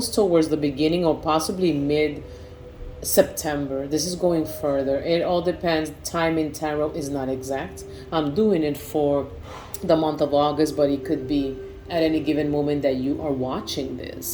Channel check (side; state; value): both; identical; correlation 1.00